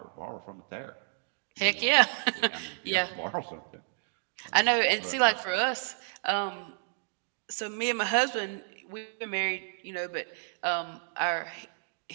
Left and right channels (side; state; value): left; silent; digital silence